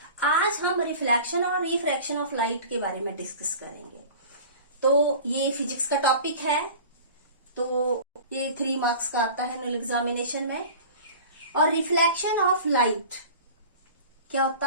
आज हम reflection और refraction of light के बारे में डिस्कस करेंगे। तो ये फिजिक्स का टॉपिक है, तो ये 3 मार्क्स का आता है एनुअल एग्जामिनेशन में। और रिफ्लेक्शन ऑफ लाइट क्या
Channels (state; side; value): inverted; both; correlation -0.39